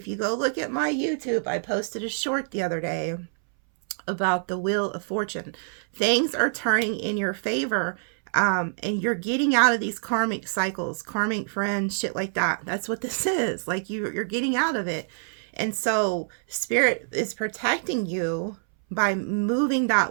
you go look at my YouTube, I posted a short the other day about the Wheel of Fortune. Things are turning in your favor, and you're getting out of these karmic cycles, karmic friends, shit like that. That's what this is. Like, you're getting out of it. And so Spirit is protecting you by moving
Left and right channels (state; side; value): silent; left; 61 dB below the other